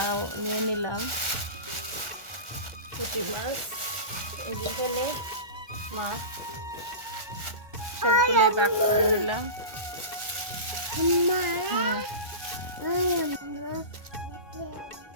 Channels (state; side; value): late; left; 1.2 ms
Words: নিয়ে নিলাম পুঁটি মাছ। এই যে এখানে মাছ সবগুলোই ভাগ করে নিলাম।